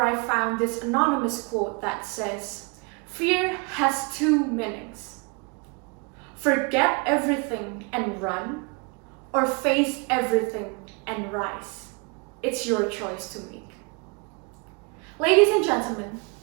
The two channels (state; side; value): quieter; left; 32.7 dB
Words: I found this anonymous quote that says, "Fear has two meanings. Forget everything and run, or face everything and rise. It's your choice to make." Ladies and gentlemen,